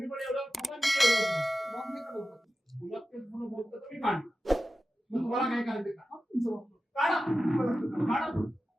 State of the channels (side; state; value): both; normal; correlation 0.93